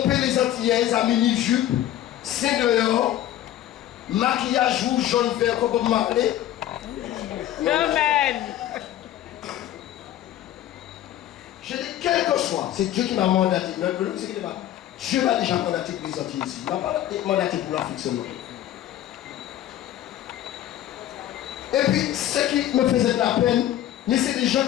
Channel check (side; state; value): right; quieter; 12.6 dB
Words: les Antillaises à mini-jupe, c'est dehors, maquillage rouge, jaune, vert, comme Bob Marley. Amen. Je dis, quel que soit, c'est Dieu qui m'a mandaté. Dieu m'a déjà mandaté pour les Antilles ici. Il m'a pas mandaté pour l'Afrique seulement. Et puis, ce qui me faisait de la peine, mais c'est des gens